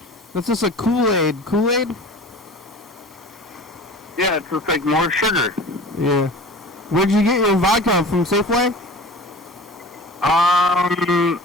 That's just a Kool-Aid. Kool-Aid? Yeah, it's just like more sugar. Yeah. Where'd you get your vodka from? Safeway?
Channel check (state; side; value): normal; both; correlation 0.39